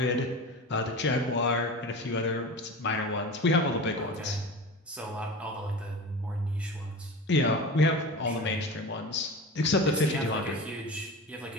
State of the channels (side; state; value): both; normal; correlation 0.31